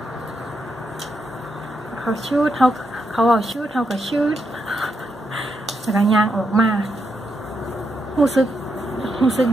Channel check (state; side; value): normal; both; correlation 0.82